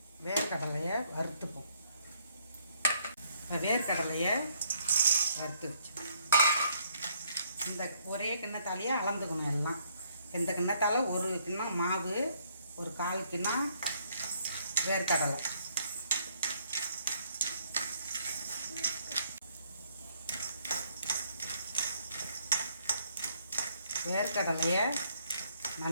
வேர்க்கடலையை வறுத்துப்போம். வேர்க்கடலையை வறுத்து வச்சு இந்த ஒரே கிண்ணத்தாலேயே அளந்துக்கணும். எல்லாம் இந்த கிண்ணத்தால் ஒரு கிண்ணம் மாவு, ஒரு 1/4 கிண்ணம் வேர்க்கடலை. வேர்க்கடலையை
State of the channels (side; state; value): both; inverted; correlation -0.68